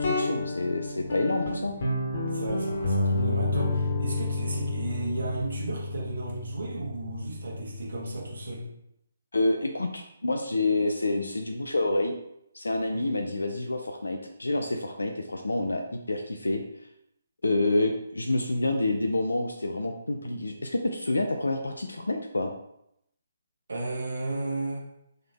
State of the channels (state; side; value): inverted; both; correlation -0.84